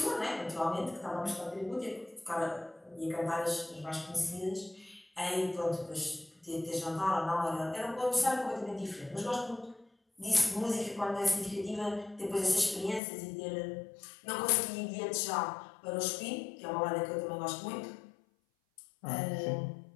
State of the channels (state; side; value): drops out; right; at 13.0 s